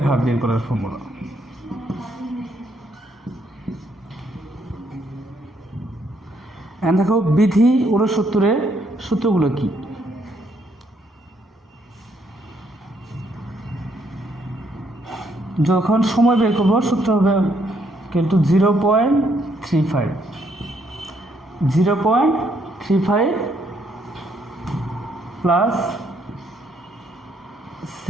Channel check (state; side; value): normal; both; correlation 0.72